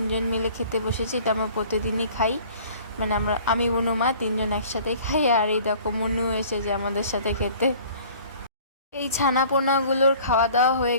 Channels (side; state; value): both; inverted; correlation -0.49